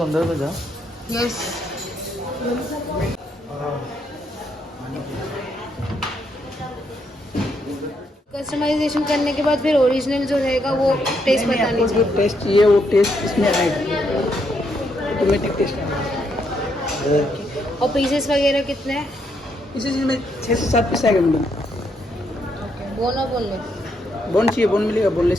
में जा। यस। कस्टमाइजेशन करने के बाद फिर ओरिजिनल जो रहेगा वो टेस्ट बतानी चाहिए। जो टेस्ट चाहिए वो टेस्ट इसमें आएगा, ऑटोमेटिक टेस्ट आएगा। और पीसेस वगैरह कितने हैं? इसी चीज़ में 6 से 7 पीस आएगा मैडम। बोन और बोनलेस? बोन चाहिए बोन मिलेगा, बोनलेस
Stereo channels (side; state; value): both; normal; correlation 0.76